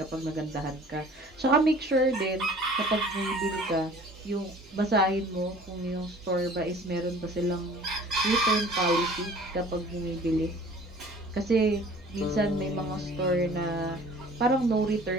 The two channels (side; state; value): both; normal; correlation 0.49